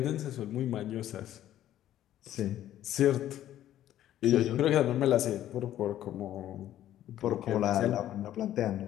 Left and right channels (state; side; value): quieter; right; 12.4 dB